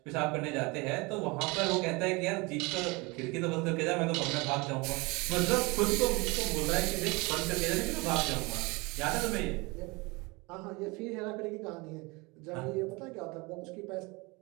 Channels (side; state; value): left; quieter; 25.9 dB